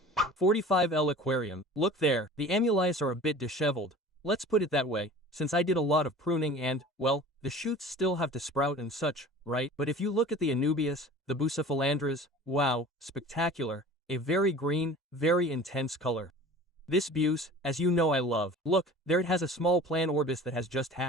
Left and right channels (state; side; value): normal; both; correlation 0.42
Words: 45L aquarium, look there, the amulets are a bit disheveled. Let's put it that way, since I did a lot of pruning and, well, the shoots still have to sprout and such, right? But if you look at the Anubias, the Bucephalandras, wow, spectacular, a very green, very intense color. This buse, as you know I love. Look, there it has a small plan orbis that has just